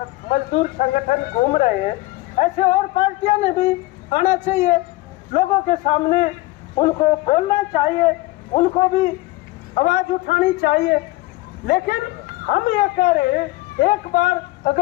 मजदूर संगठन घूम रहे हैं, ऐसे और पार्टियां ने भी आना चाहिए लोगों के सामने, उनको बोलना चाहिए, उनको भी आवाज उठानी चाहिए। लेकिन हम ये कह रहे हैं, एक बार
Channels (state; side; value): quieter; right; 19.8 dB